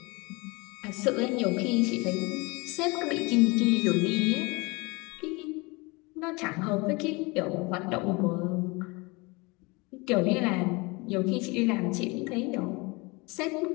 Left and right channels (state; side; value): quieter; right; 26.4 dB